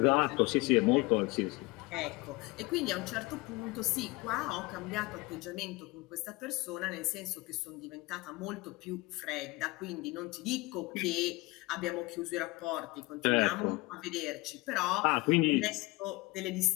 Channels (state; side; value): quieter; right; 22.4 dB